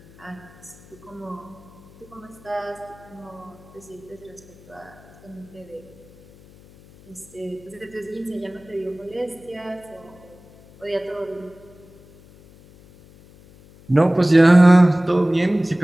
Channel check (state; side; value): noise; left; hum, 24 dB below the sound